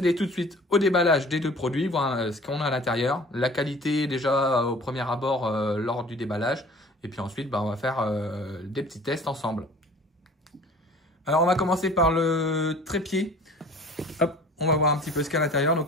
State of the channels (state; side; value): normal; both; correlation 0.47